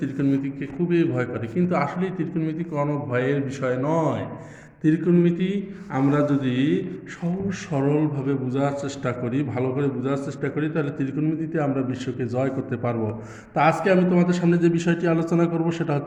ত্রিকোণমিতিকে খুবই ভয় করে, কিন্তু আসলে ত্রিকোণমিতি কোনো ভয়ের বিষয় নয়। ত্রিকোণমিতি আমরা যদি সহজ সরলভাবে বোঝার চেষ্টা করি, ভালো করে বোঝার চেষ্টা করি, তাহলে ত্রিকোণমিতিতে আমরা বিশ্বকে জয় করতে পারবো। তা আজকে আমি তোমাদের সামনে যে বিষয়টি আলোচনা করব সেটা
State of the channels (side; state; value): both; identical; correlation 1.00